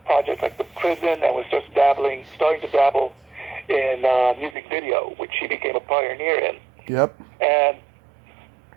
projects like The Prison, and was just starting to dabble in music video, which he became a pioneer in. Yep. And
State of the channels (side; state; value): left; drops out; at 4.5 s